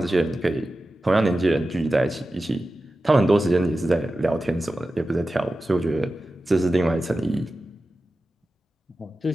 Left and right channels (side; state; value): both; normal; correlation 0.94